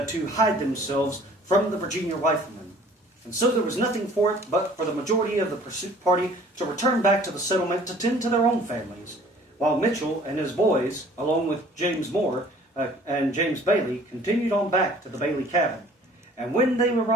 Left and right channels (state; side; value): normal; both; correlation 0.52